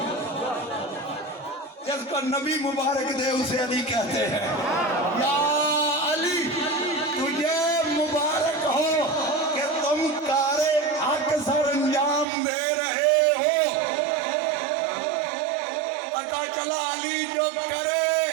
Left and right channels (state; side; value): drops out; left; at 12.2 s